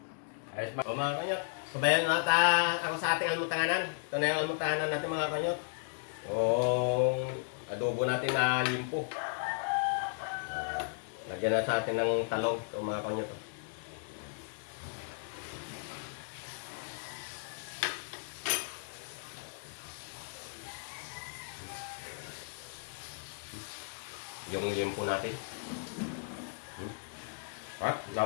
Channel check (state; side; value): silent; right; digital silence